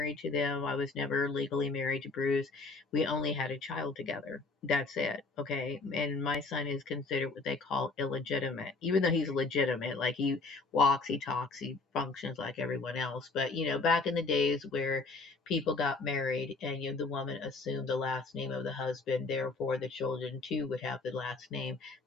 to them. I was never legally married to Bruce. We only had a child together. That's it, okay? And my son is considered what they call illegitimate, even though he's legitimate. Like he walks, he talks, he functions like everyone else. But, back in the days where people got married and the woman assumed the last name of the husband, therefore the children too would have the last name.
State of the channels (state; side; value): quieter; right; 3.8 dB